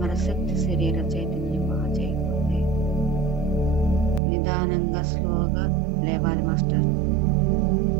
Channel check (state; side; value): drops out; left; at 4.2 s